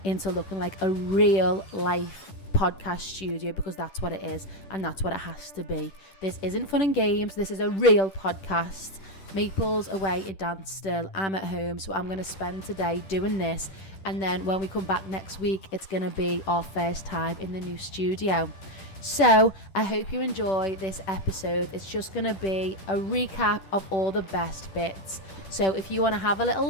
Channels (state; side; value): late; right; 10 ms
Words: into looking like a real life podcast studio, because that's what it is and that's what it has to be. This isn't fun and games. This is a real podcast. Maple's away in dance still. I'm at home, so I'm going to spend today doing this, and then when we come back next week it's going to be our first time in the new studio. So I hope you enjoy this episode. It's just going to be a recap of all the best bits. So if you want to have a little